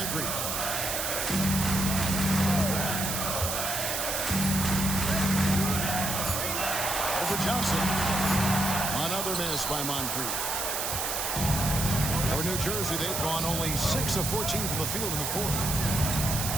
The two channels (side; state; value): right; noise; hiss, 1 dB below the sound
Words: Over Johnson. Another miss by Moncrief. For New Jersey, they've gone only 6 of 14 from the field in the 4th.